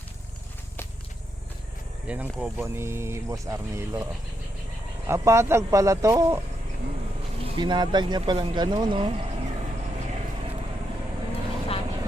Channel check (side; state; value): both; normal; correlation 0.81